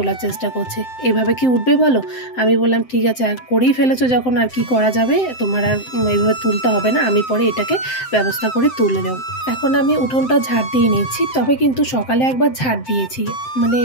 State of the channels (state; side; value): late; right; 7.8 ms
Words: চেষ্টা করছে। এভাবে কি উঠবে বলো? আমি বললাম ঠিক আছে, আর করেই ফেলেছো যখন আর কি করা যাবে, তোমার আর এইভাবে তুলতে হবে না, আমি পরে এটাকে ব্যবস্থা করে তুলে নেব। এখন আমি উঠোনটা ঝাড় দিয়ে নিচ্ছি। তবে কিন্তু সকালে একবার ঝাড় দিয়েছি, মানে